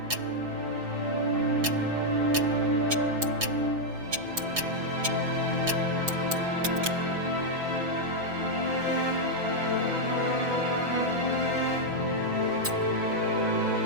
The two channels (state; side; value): late; left; 6.0 ms